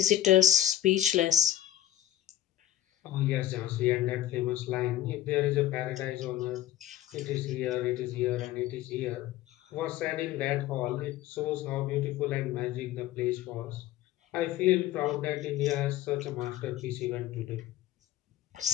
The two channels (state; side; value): quieter; right; 13.1 dB